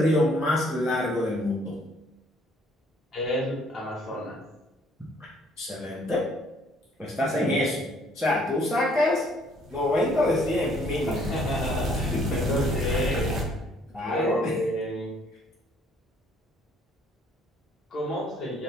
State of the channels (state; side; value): normal; both; correlation 0.63